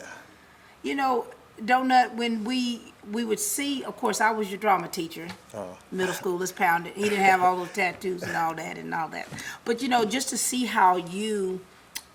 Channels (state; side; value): identical; both; correlation 1.00